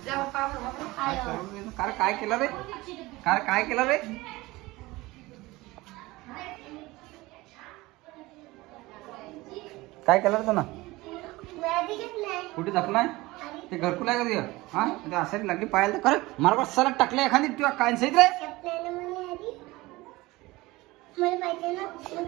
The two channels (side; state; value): left; quieter; 20.4 dB